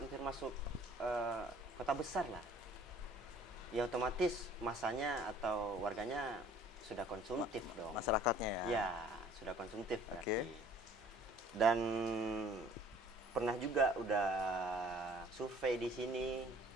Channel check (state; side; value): normal; both; correlation 0.53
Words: masuk kota besar lah. Ya otomatis masanya atau warganya sudah konsumtif dong. Masyarakatnya ya. Ya, sudah konsumtif berarti. Dan pernah juga udah survei di sini